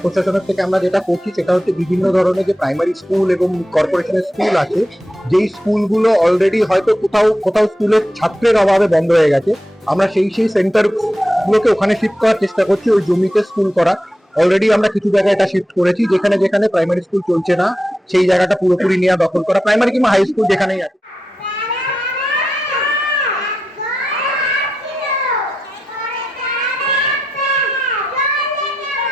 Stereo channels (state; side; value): normal; both; correlation 0.88